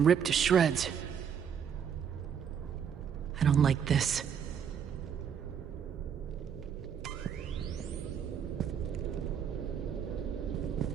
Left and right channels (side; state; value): left; quieter; 7.8 dB